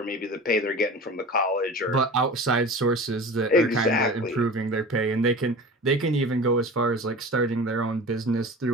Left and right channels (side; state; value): both; normal; correlation 0.36